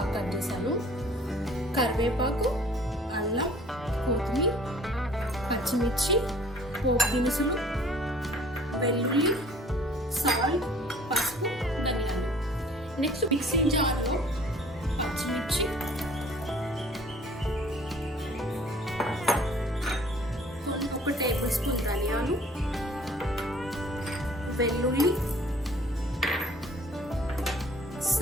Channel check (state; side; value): normal; both; correlation 0.53